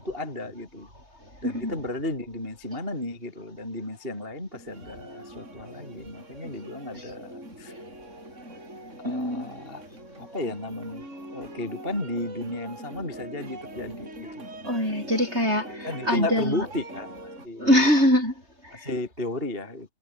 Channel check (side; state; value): left; late; 3.3 ms